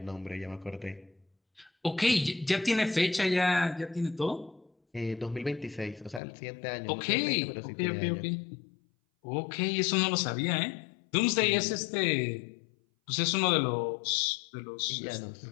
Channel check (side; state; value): right; drops out; at 6.2 s